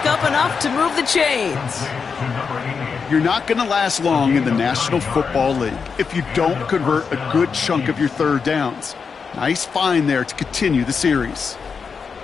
up enough to move the chains. You're not going to last long in the National Football League if you don't convert a good chunk of your 3rd downs. Nice find there to continue the series.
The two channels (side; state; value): right; quieter; 5.6 dB